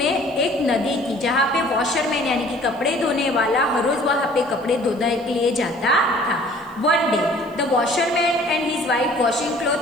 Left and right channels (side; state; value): left; noise; hiss, 30 dB below the sound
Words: एक नदी थी जहाँ पे वॉशरमैन यानी कि कपड़े धोने वाला हर रोज वहाँ पे कपड़े धोने के लिए जाता था. One day, the washerman and his wife washing